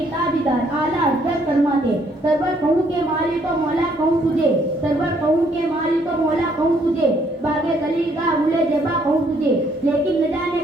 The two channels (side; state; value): both; normal; correlation 0.67